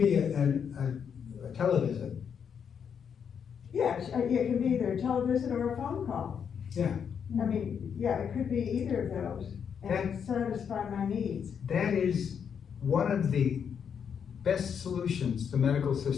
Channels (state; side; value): quieter; right; 7.4 dB